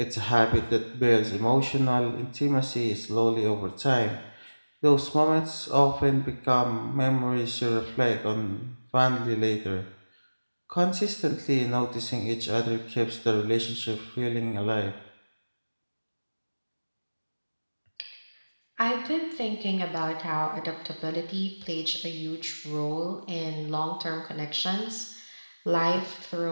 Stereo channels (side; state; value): both; inverted; correlation -1.00